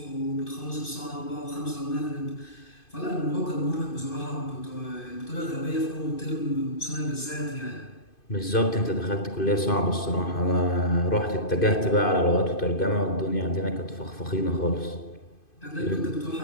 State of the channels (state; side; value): late; right; 2.5 ms